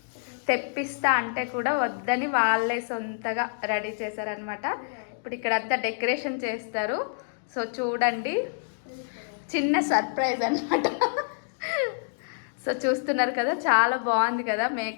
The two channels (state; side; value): silent; right; digital silence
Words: తెప్పిస్తా అంటే కూడా వద్దని వాళ్ళే సొంతగా రెడీ చేశారనమాట. ఇప్పుడు ఇక్కడ అంతా డెకరేషన్ చేస్తారు. సో చూడండి, చిన్న సర్ప్రైజ్ అనమాట. సో చూస్తున్నారు కదా, చాలా బాగుంది కదా